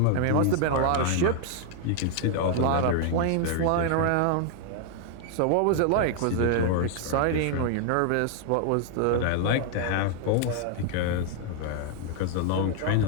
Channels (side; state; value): both; different; correlation 0.00